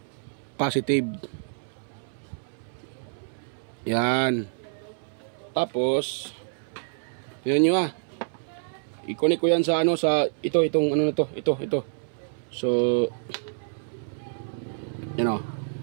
positive. Yan. Tapos tingnan nyo ah. I-connect ko yan sa ano, sa itong ano na to. Ito. So yan o.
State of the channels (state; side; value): silent; left; 60 dB below the other